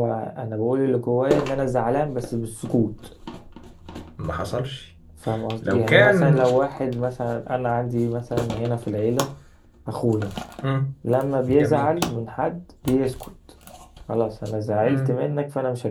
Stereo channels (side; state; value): both; identical; correlation 1.00